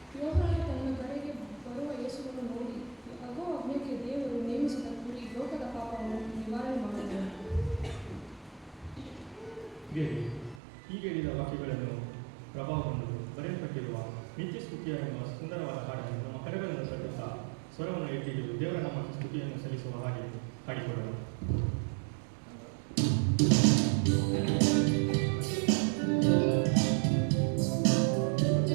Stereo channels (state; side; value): drops out; left; at 10.6 s